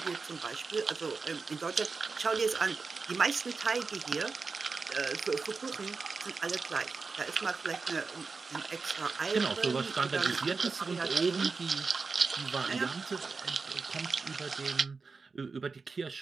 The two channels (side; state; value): left; quieter; 4.4 dB